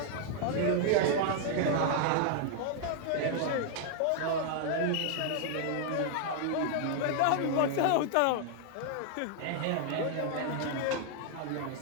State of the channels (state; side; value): different; both; correlation 0.00